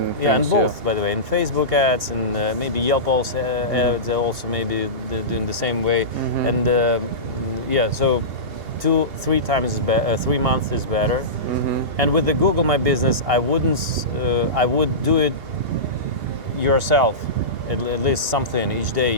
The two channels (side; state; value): left; late; 2.8 ms